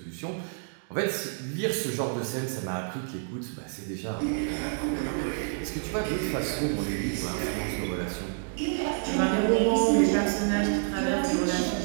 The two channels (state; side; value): silent; left; digital silence